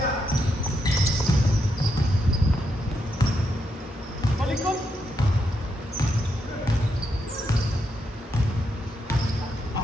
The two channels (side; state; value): both; normal; correlation 0.81